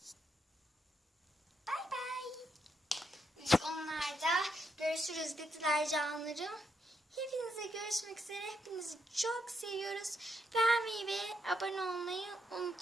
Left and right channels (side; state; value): both; normal; correlation 0.79